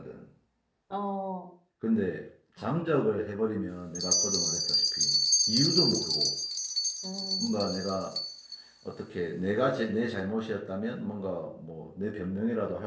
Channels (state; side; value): identical; both; correlation 1.00